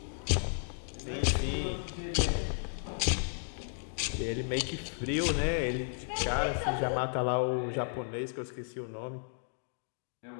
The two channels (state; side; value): silent; right; digital silence